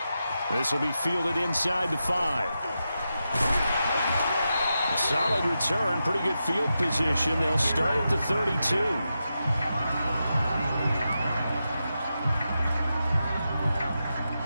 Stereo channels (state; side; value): inverted; both; correlation -0.89